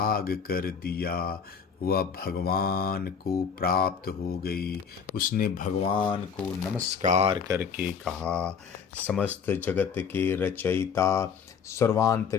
कर दिया। वह भगवान को प्राप्त हो गई। उसने भगवान को नमस्कार करके कहा, समस्त जगत के रचयिता,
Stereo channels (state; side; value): quieter; right; 6.6 dB